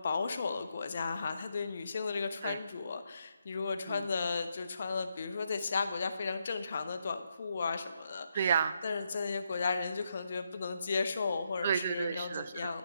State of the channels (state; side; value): inverted; both; correlation -0.80